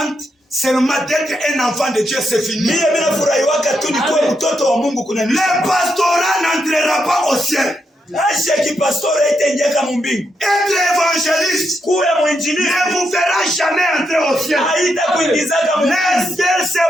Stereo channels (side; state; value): both; normal; correlation 0.82